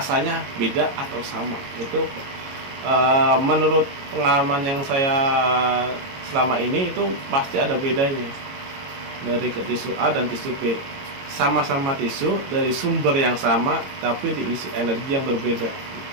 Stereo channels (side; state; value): left; late; 22 ms